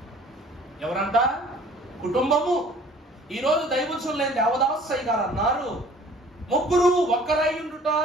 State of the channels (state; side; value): normal; both; correlation 0.52